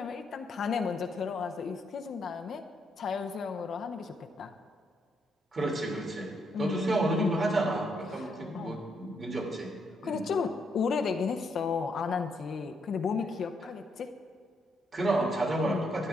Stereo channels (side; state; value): both; normal; correlation 0.76